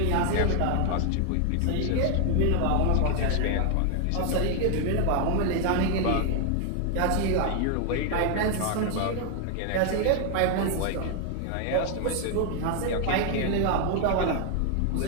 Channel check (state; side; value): different; both; correlation 0.00